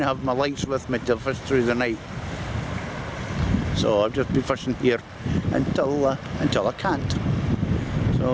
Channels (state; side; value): identical; both; correlation 1.00